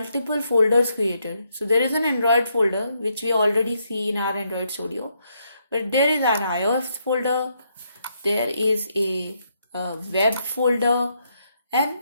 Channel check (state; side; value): inverted; both; correlation -0.77